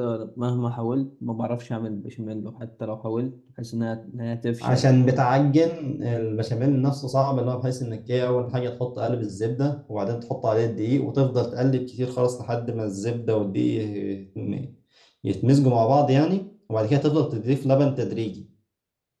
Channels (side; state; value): both; identical; correlation 1.00